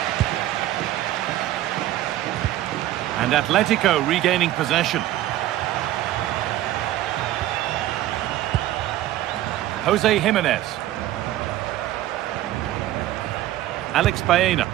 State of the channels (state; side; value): quieter; left; 14.3 dB